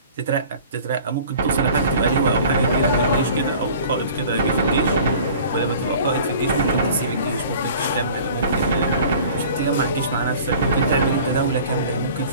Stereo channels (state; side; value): inverted; both; correlation -0.46